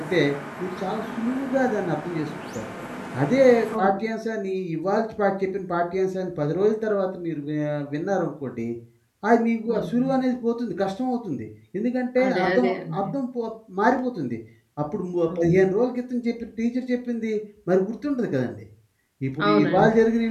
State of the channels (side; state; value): both; identical; correlation 1.00